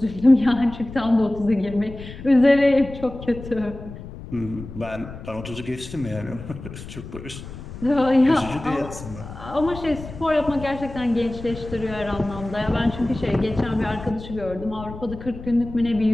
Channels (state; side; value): noise; left; rumble, 13 dB below the sound